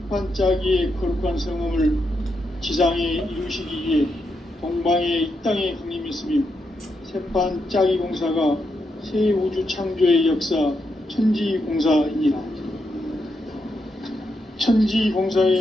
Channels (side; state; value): both; normal; correlation 0.83